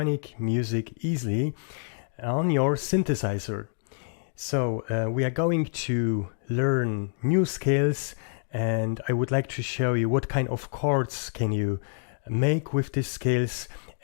music easily on your synthesizer. So we are going to learn new scales and I would like to show you what kind of chords can you make with these scales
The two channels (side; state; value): right; silent; digital silence